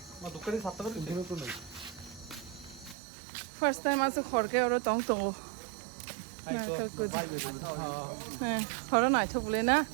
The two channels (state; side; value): drops out; left; at 3.0 s